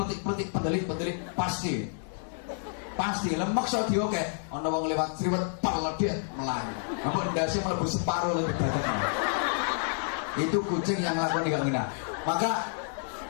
pendelik pasti. Pasti lemak so diokeh. Ana wong lewat sriwet peledet melayu. Ampun ndase mlebu separo lebih badan. Itu kucing yang lakoni gak ngena. Maka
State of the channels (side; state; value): right; silent; digital silence